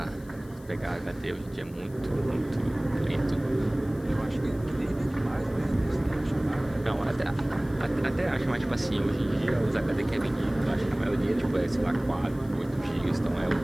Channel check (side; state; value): left; noise; hiss, 26 dB below the sound